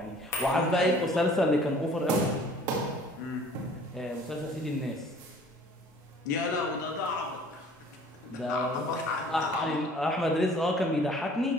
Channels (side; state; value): both; normal; correlation 0.52